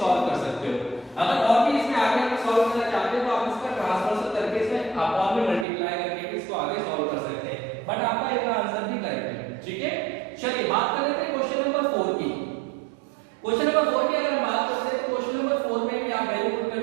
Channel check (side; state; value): left; drops out; at 5.7 s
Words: कर सकते हो। अगर और भी इसमें आगे आप सॉल्व करना चाहते हो तो आप इसका ट्रांसफर करके इसमें अपॉन में मल्टीप्लाई करके इसको आगे सॉल्व कर सकते हैं, बट आपका इसका आंसर भी करेक्ट है। ठीक है, चलिए बात कर लेते हैं क्वेश्चन नंबर 4 की। क्वेश्चन नंबर 4 की अगर हम बात करते हैं तो क्वेश्चन नंबर 4 में भी आप वैल्यू पुट कर